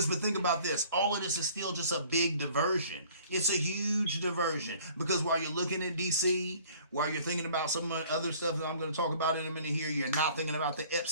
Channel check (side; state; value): both; inverted; correlation -0.52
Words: but think about this. All of this is still just a big diversion. It's a huge diversion. Because while you're looking at D.C., while you're thinking about some other stuff that I'm going to talk about in a minute here, you're not thinking about the